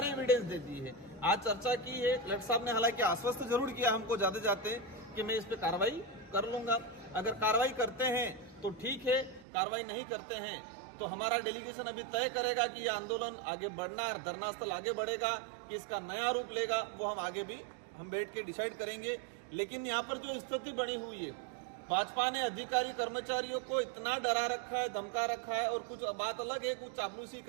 एविडेंस दे दी है, आज चर्चा की है। कलेक्टर साहब ने हालांकि आश्वस्त जरूर किया हमको जाते जाते कि मैं इस पे कार्रवाई कर लूंगा। अगर कार्रवाई करते हैं तो ठीक है, कार्रवाई नहीं करते हैं तो हमारा डेलीगेशन अभी तय करेगा कि ये आंदोलन आगे बढ़ना, धरना स्थल आगे बढ़ेगा कि इसका नया रूप लेगा, वो हम आगे भी हम बैठ के डिसाइड करेंगे। लेकिन यहाँ पर जो स्थिति बनी हुई है, भाजपा ने अधिकारी कर्मचारियों को इतना डरा रखा है, धमका रखा है, और कुछ बात अलग है, कुछ चापलूसी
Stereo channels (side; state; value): left; drops out; at 9.5 s